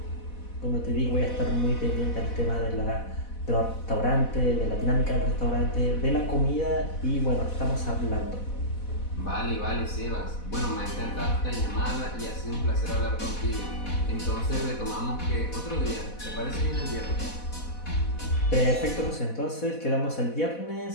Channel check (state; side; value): late; right; 4.1 ms